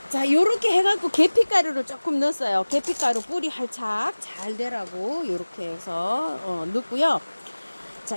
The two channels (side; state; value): both; inverted; correlation -1.00